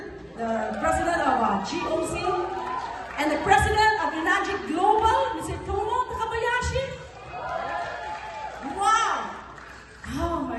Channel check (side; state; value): both; identical; correlation 1.00